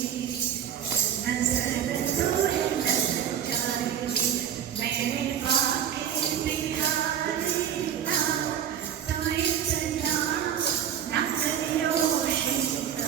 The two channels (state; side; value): quieter; left; 9.3 dB